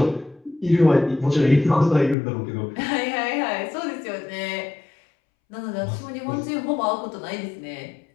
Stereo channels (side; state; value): right; drops out; at 2.1 s